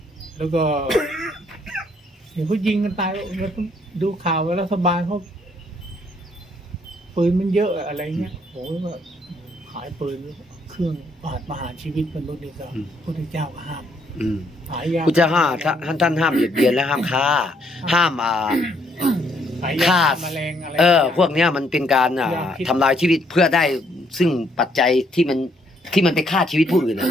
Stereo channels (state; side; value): normal; both; correlation 0.69